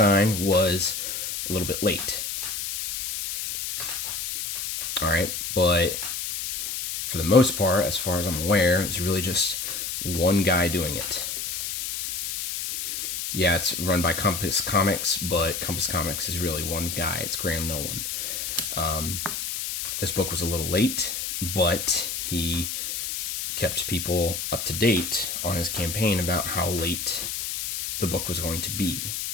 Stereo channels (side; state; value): left; noise; hiss, 4 dB below the sound